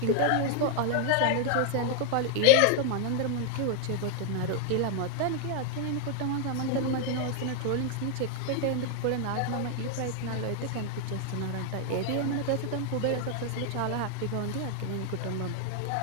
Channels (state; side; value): different; both; correlation 0.00